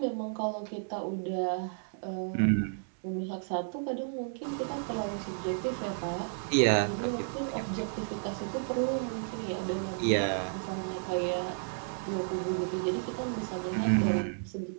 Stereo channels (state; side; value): silent; left; digital silence